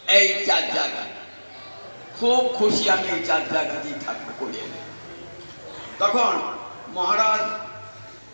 এই চার জায়গায় খুব খুশি আমি, এই চার জায়গাতেই থাকবো করিয়ে। তখন মহারাজ,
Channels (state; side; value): inverted; both; correlation -1.00